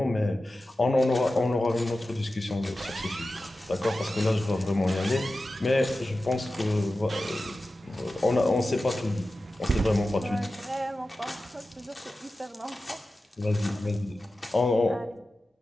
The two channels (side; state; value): both; normal; correlation 0.94